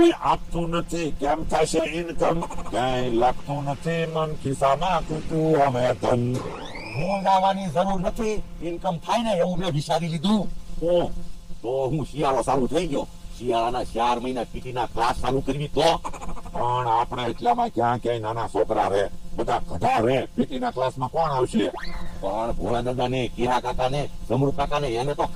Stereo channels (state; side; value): identical; both; correlation 1.00